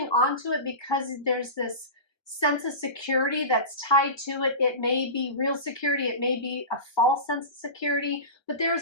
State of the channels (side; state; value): right; late; 1.4 ms